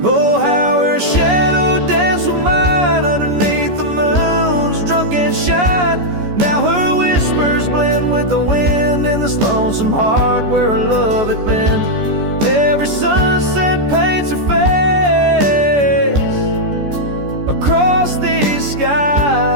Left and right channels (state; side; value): late; left; 14 ms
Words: Oh, how her shadow danced with mine underneath the moon's drunken shine. Now her whispers blend with the wind in this lonesome heart where her love had been. Every sunset paints her face across these